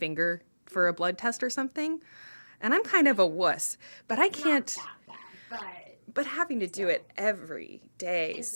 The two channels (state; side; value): inverted; both; correlation -1.00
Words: for a blood test or something. And I'm kind of a wuss, but I can't. Not that bad, but having to do it every day,